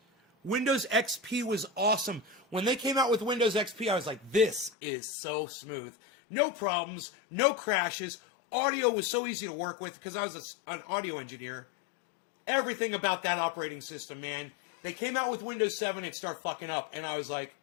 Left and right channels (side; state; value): right; drops out; at 4.7 s